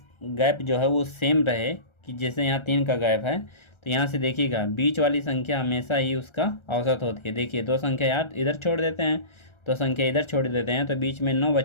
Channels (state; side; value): late; right; 1.3 ms